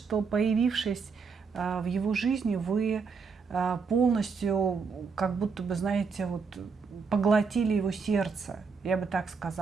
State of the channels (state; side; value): quieter; left; 5.2 dB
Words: появившись в его жизни, вы полностью, как будто бы, знаете, вот, поглотили его сердце, я бы так